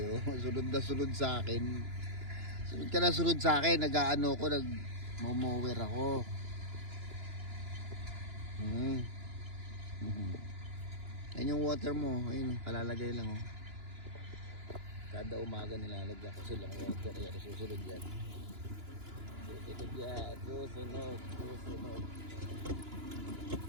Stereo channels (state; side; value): late; left; 2.9 ms